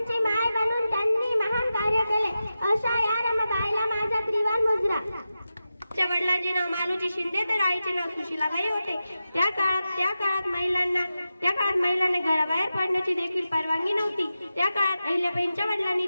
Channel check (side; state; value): both; inverted; correlation -0.92